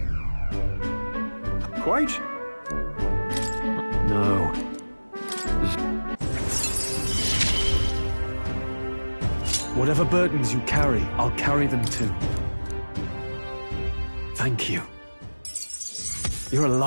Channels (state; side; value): inverted; both; correlation -1.00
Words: Quite. No. Whatever burdens you carry, I'll carry them too. Thank you. You're a